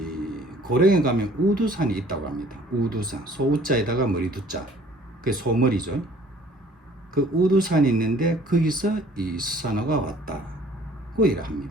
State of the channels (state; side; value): normal; both; correlation 0.55